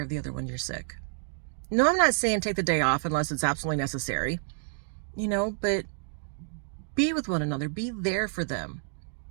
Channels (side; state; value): left; silent; digital silence